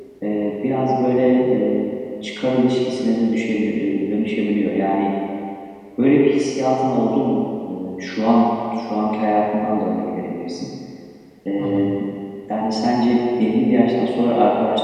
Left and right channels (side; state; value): both; identical; correlation 1.00